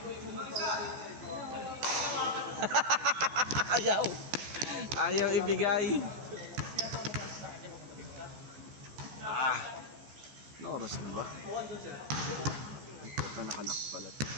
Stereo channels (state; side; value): late; left; 14 ms